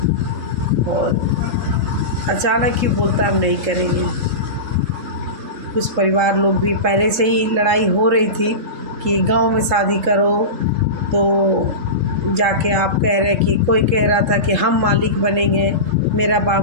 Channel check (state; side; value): late; left; 3.7 ms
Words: और अचानक ही बोलता हम नहीं करेंगे। कुछ परिवार लोग भी पहले से ही लड़ाई हो रही थी कि गांव में शादी करो, तो जाके आप कह रहे कि कोई कह रहा था कि हम मालिक बनेंगे, मेरा